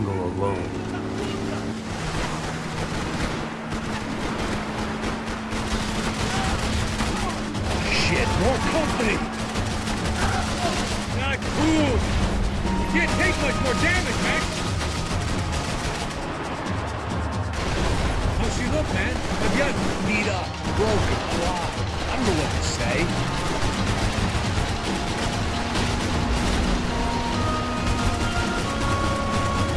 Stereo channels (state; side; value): identical; both; correlation 1.00